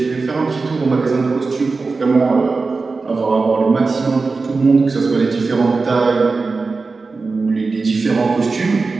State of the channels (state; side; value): quieter; left; 4.1 dB